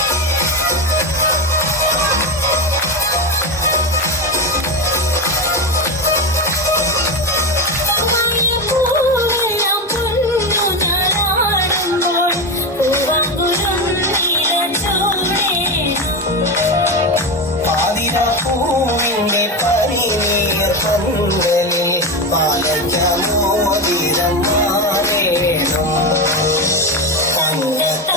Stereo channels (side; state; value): both; normal; correlation 0.15